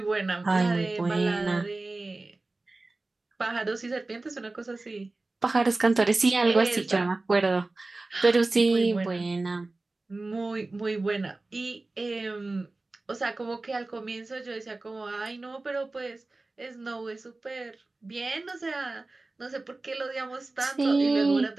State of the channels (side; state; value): left; quieter; 3.2 dB